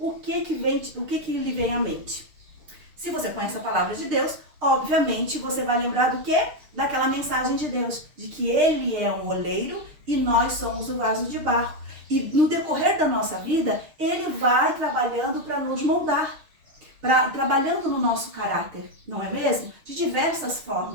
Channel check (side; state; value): left; late; 6.5 ms